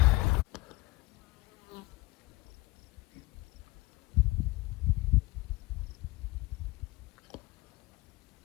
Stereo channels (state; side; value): quieter; right; 21.2 dB